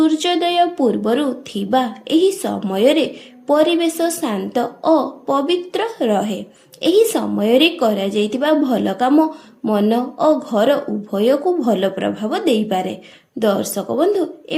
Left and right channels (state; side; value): identical; both; correlation 1.00